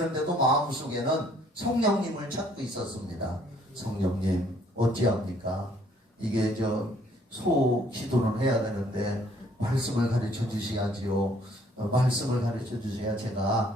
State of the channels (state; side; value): normal; both; correlation 0.62